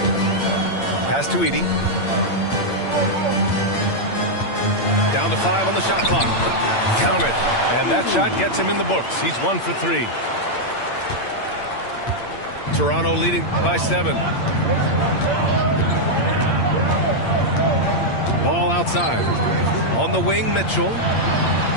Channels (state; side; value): late; right; 8.7 ms